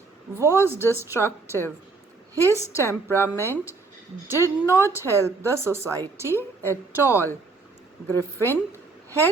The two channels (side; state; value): left; quieter; 4.0 dB